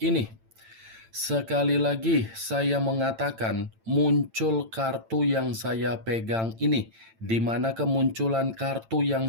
ini. Sekali lagi saya mengatakan muncul kartu yang saya pegang ini, di mana kemunculan kartu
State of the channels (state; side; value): late; left; 8.9 ms